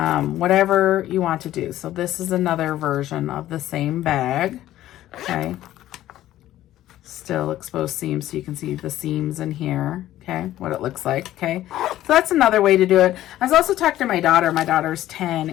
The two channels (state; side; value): quieter; right; 13.8 dB